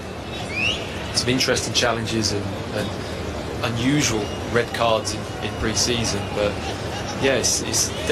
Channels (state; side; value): identical; both; correlation 1.00